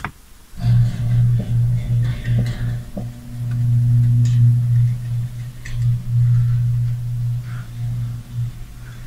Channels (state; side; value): identical; both; correlation 1.00